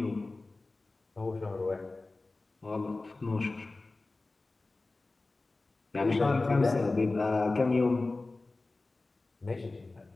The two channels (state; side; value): quieter; right; 3.3 dB